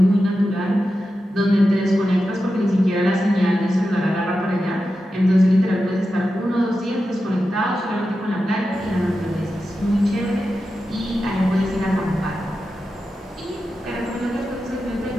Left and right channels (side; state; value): both; normal; correlation 0.91